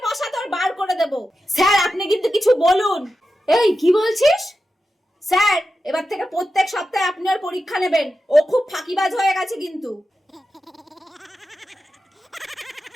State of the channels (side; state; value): both; normal; correlation 0.91